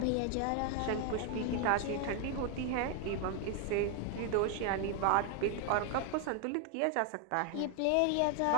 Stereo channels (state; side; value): different; both; correlation 0.01